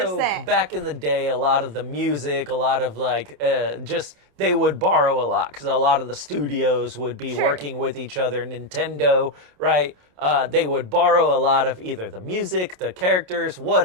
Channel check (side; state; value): left; late; 27 ms